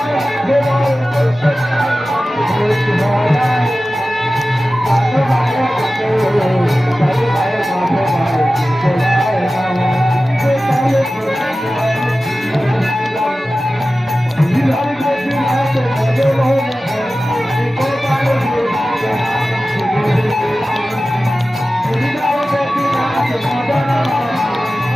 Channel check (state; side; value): normal; both; correlation 0.95